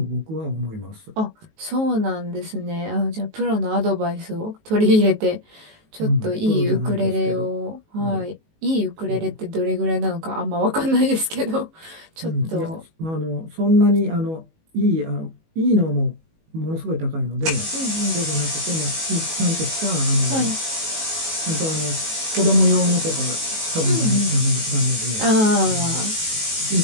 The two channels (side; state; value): left; late; 19 ms